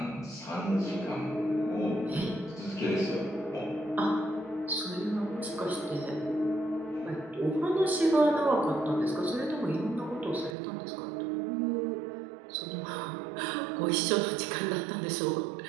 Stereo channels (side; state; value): left; drops out; at 10.6 s